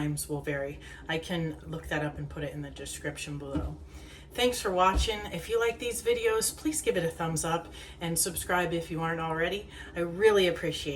will vary. I can look that up and put it in the description below. Thanks for watching. If you like these videos, please give it a thumbs up and subscribe if you aren't already. I really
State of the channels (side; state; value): both; identical; correlation 1.00